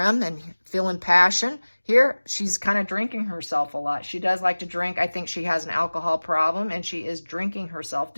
and feeling passion. Here, she's kind of drinking herself a lot. She does like to drink. I think she has an alcohol problem, and she is drinking herself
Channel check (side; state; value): both; inverted; correlation -1.00